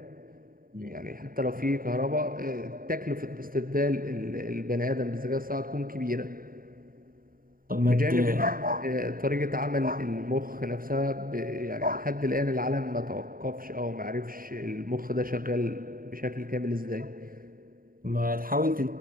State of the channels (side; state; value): left; late; 0.41 ms